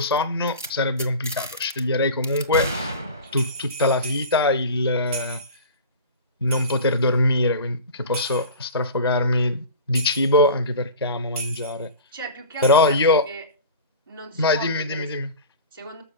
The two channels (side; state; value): both; inverted; correlation -0.35